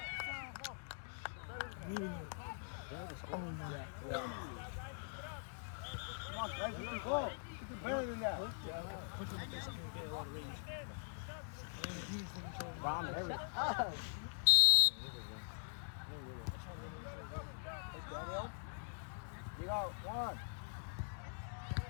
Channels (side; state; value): right; silent; digital silence